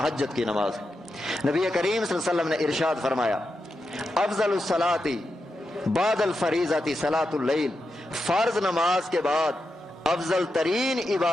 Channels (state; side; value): normal; both; correlation 0.87